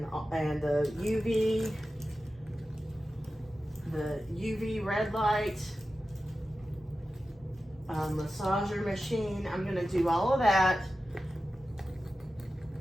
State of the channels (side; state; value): both; normal; correlation 0.93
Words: the UV red light massager machine. I'm gonna do all of that.